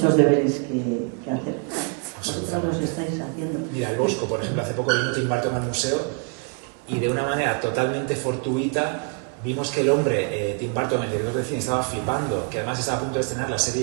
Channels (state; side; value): quieter; left; 39.3 dB